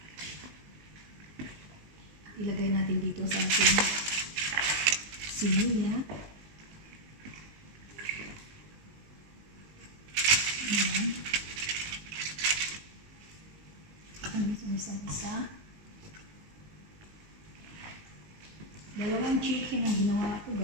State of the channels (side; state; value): left; late; 19 ms